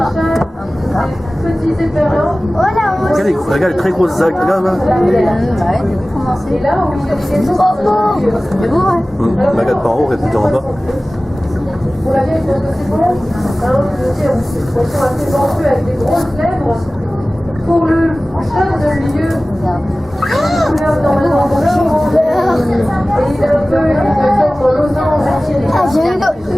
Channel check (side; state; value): both; normal; correlation 0.97